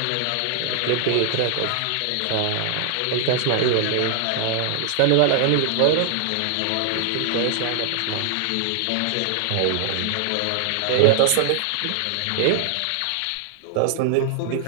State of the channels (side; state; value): both; different; correlation 0.00